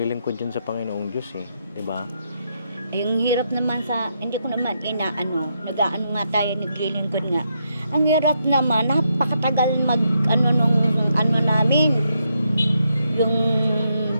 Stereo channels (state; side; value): inverted; both; correlation -0.80